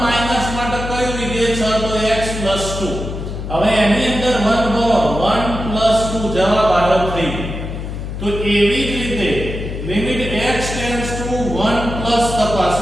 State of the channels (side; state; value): left; noise; hum, 6 dB below the sound